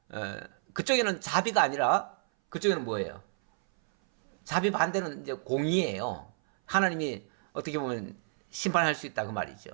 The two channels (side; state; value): left; silent; 58 dB below the other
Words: 그쪽에는 자비가 아니라 그쪽에는 뭐예요? 자비 반대는 이제 공의예요. 하나님이 어떻게 보면 심판할 수 있다 그 말이죠.